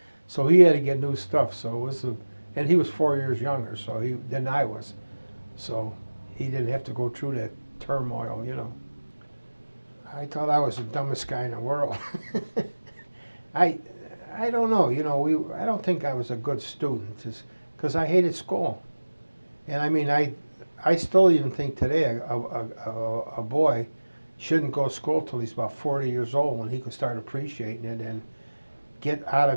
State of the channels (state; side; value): inverted; both; correlation -1.00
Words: so he had to get new stuff. So it was and he was 4 years younger, than I was, so he didn't have to go through that turmoil, you know. I thought I was the dumbest guy in the world. I I don't know, you know. I don't think I was a good student, just because I hated school, and I mean I still even think today a boy shouldn't go to school till he's about 40 years old when he could start appreciating it and get out